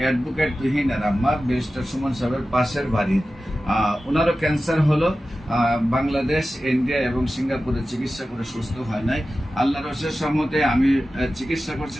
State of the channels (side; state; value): both; normal; correlation 0.94